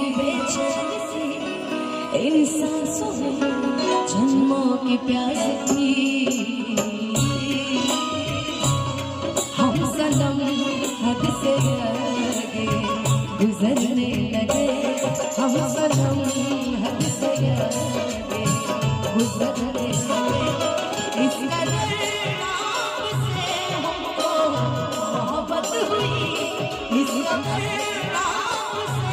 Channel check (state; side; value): identical; both; correlation 1.00